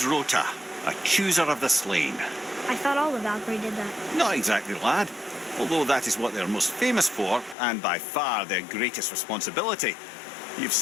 Rota, a chooser of the slain. I thought all the Valkyrie did that. Not exactly, lad. Although that is what they're most famous for, and by far their greatest responsibility. You've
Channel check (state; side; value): drops out; right; at 7.6 s